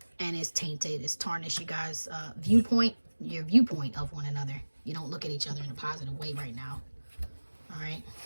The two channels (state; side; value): inverted; both; correlation -1.00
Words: And it's tainted, it's tarnished you guys' viewpoint, your viewpoint of one another. You don't look at each other in a positive way right now. All right.